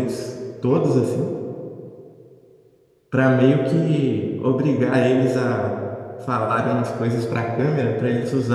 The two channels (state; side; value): identical; both; correlation 1.00